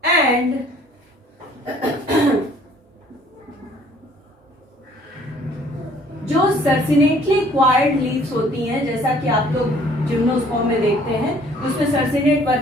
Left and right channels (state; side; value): normal; both; correlation 0.57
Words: and जो सर्सिनेटली क्वायर्ड लीव्स होती हैं, जैसा कि आप लोग जिम्नोस्पर्म में देखते हैं, उसमें सर्सिनेट